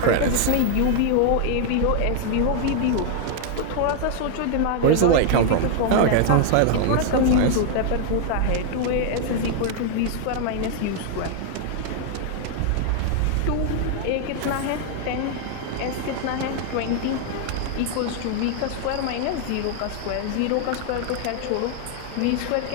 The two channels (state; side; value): different; both; correlation 0.00